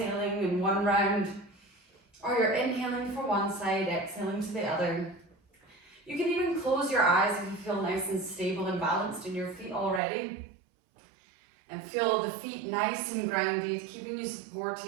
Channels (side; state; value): left; drops out; at 10.0 s